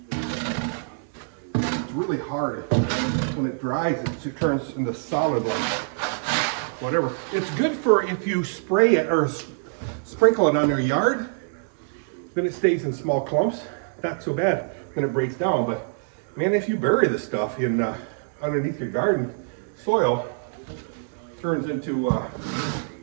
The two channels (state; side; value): silent; left; 62 dB below the other